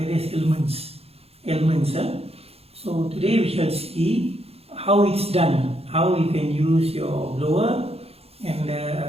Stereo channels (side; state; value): left; late; 0.29 ms